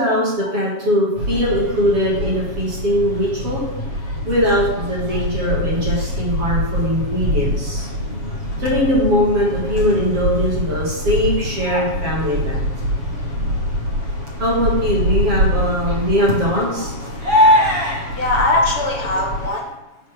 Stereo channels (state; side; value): late; left; 7.3 ms